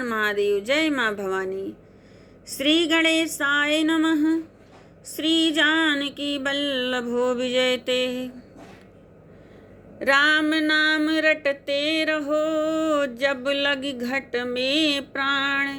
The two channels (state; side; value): identical; both; correlation 1.00